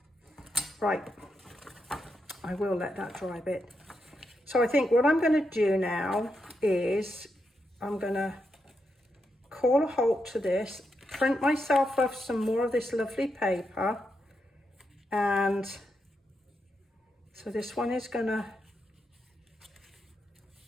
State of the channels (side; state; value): both; normal; correlation 0.84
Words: Right, I will let that dry a bit. So I think what I'm going to do now is I'm going to call a halt to this, print myself off some more of this lovely paper, and so this one is going to